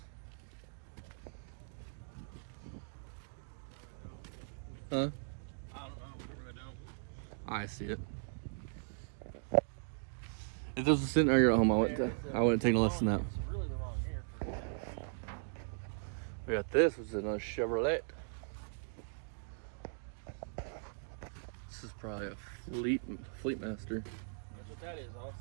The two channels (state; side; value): silent; left; digital silence